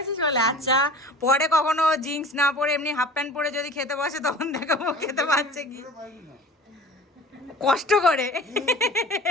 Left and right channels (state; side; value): normal; both; correlation 0.41